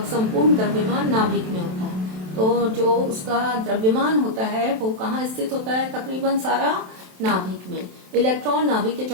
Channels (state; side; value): late; left; 27 ms